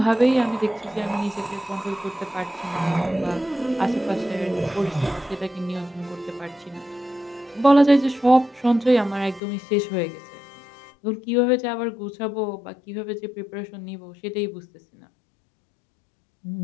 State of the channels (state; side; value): drops out; right; at 9.4 s